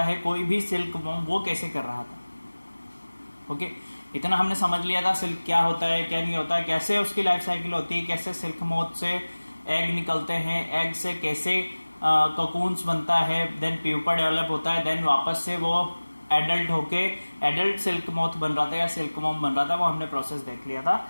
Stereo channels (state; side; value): inverted; both; correlation -1.00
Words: है कोई भी सिल्क वो कैसे कर रहा था। ओके, इतना हमने समझ लिया था सिल्क क्या होता है क्या नहीं होता है, कैसे उसकी लाइफ साइकिल होती है, कैसे सिल्क मोथ से एग निकलते हैं, एग से कैसे कोकून्स बनता है, देन प्यूपा डेवलप होता है, देन वापस से वो एडल्ट होके एडल्ट सिल्क मोथ बन रहा था या सिल्क मॉम बन रहा था। वो हमने प्रोसेस देख लिया था।